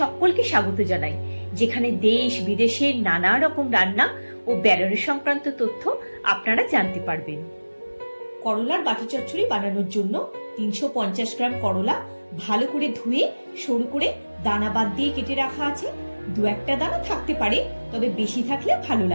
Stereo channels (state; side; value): inverted; both; correlation -1.00